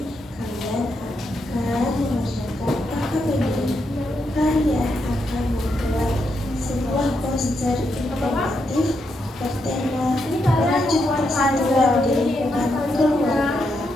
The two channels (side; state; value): both; normal; correlation 0.81